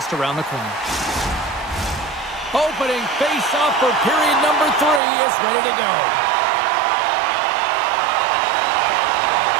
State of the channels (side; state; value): left; drops out; at 5.0 s